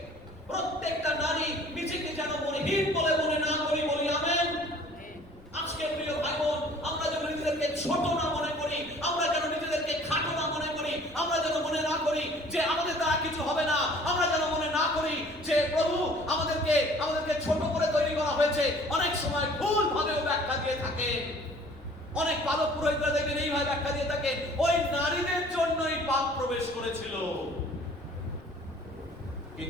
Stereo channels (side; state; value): left; noise; rumble, 25 dB below the sound